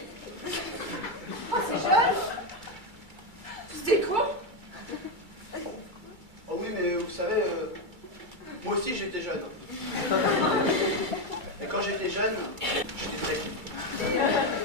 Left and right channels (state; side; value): late; left; 2.3 ms